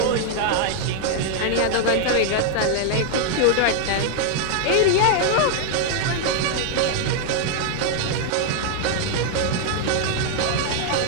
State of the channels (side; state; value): both; different; correlation 0.00